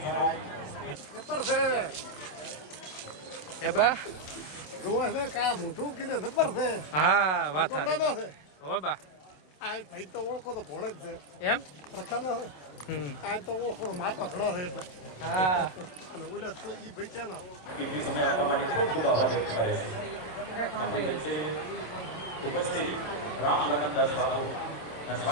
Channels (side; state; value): right; late; 27 ms